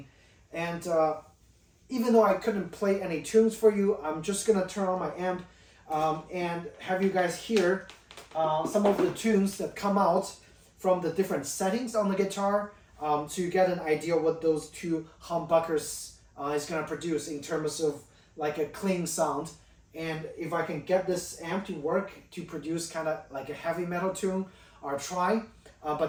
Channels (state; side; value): identical; both; correlation 1.00